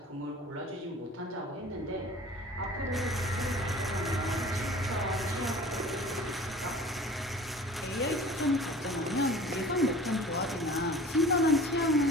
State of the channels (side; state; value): both; normal; correlation 0.44